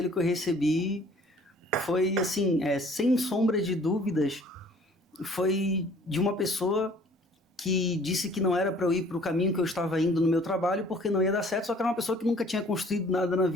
que eu recebi foi, assim, sem sombra de dúvidas, foi de uma pessoa que disse que não era para eu ir para o caminho que eu estava indo no meu trabalho porque não ia dar certo, só que era uma pessoa que nunca tinha construído nada na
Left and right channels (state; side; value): normal; both; correlation 0.54